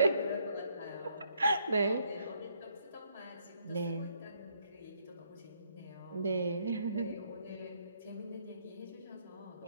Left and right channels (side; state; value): both; inverted; correlation -0.71